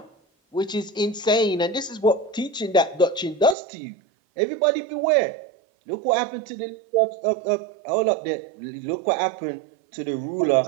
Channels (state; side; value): drops out; left; at 3.6 s